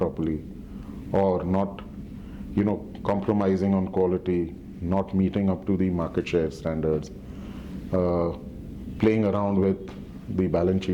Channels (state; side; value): identical; both; correlation 1.00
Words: or not, compromising on quality, not meeting up to the market share standards, playing around with the balance